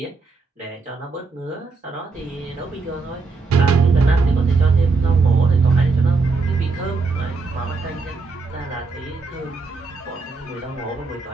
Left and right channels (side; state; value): left; quieter; 4.1 dB